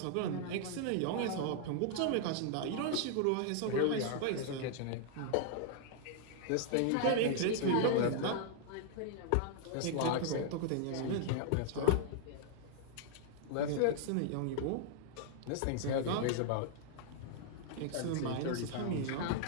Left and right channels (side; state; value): both; different; correlation -0.01